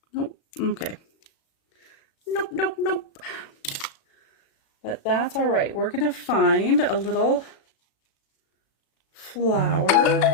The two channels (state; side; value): late; right; 36 ms